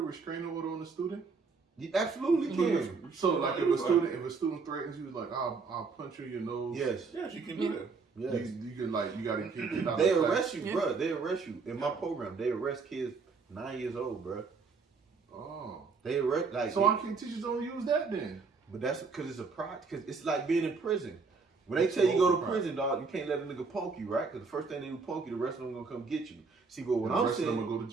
restraining order on a student? You absolutely can. So like if a student threatens you, like I'll punch you in your nose. Yes, you can do that. Yes. You can you gotta get out. They arrest you, bro. They arrest you. In my program, they arrest kids 9 years old, bro. Oh. They like. So why can't teachers don't use that then? But that's because it's a project. Because it's like being in prison. When they tell you go to prison, dog, you can't let a nigga poke you, right? Because the first thing they do poke you, the rest of them gonna come get you. See, but what I'm saying, the rest of them gonna go to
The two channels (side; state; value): left; quieter; 4.7 dB